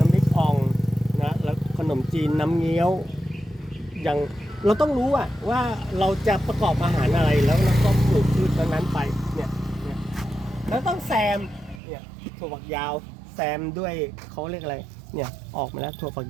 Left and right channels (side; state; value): left; drops out; at 11.8 s